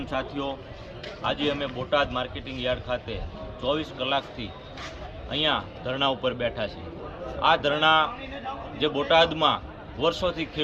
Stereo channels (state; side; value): identical; both; correlation 1.00